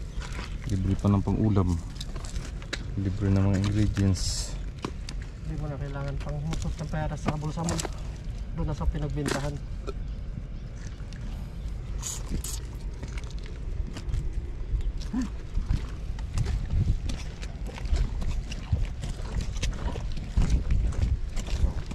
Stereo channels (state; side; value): identical; both; correlation 1.00